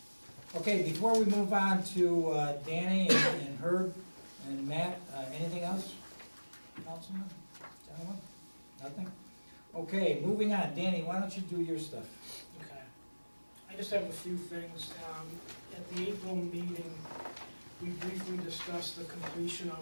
Okay, before we move on to Danny and Herb and Matt, anything else? Councilman, gentlemen? Nothing? Okay, moving on. Danny, why don't you do your stuff? Okay. I just have a few things. At the April meeting, we briefly discussed the completion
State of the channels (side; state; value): both; inverted; correlation -1.00